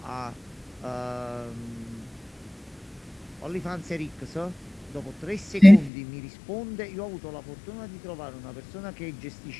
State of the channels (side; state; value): right; drops out; at 5.9 s